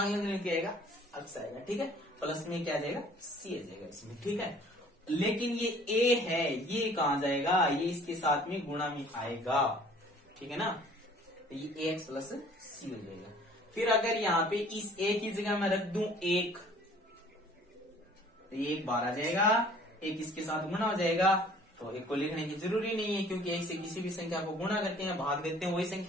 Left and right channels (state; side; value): normal; both; correlation 0.53